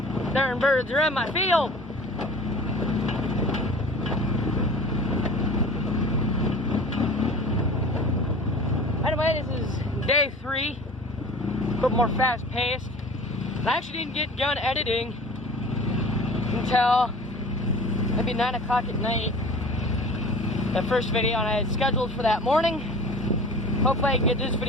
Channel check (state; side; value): normal; both; correlation 0.41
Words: Darn birds are in my field. Anyway, this is day 3, a bit more fast paced. I actually didn't get done editing until maybe 9 o'clock at night. The first video and I had scheduled for that morning. Hopefully I can get this